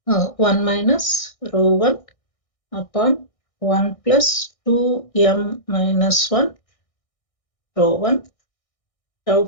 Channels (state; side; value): late; right; 1.6 ms